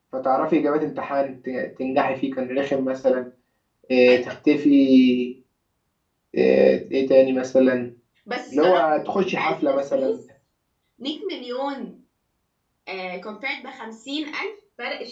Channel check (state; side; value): identical; both; correlation 1.00